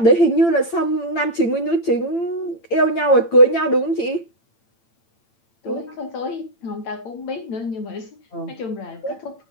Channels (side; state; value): right; late; 8.9 ms